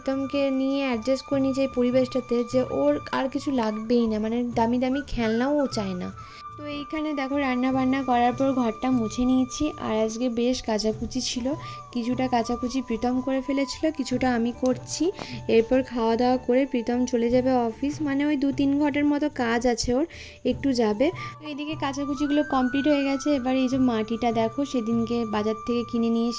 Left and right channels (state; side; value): identical; both; correlation 1.00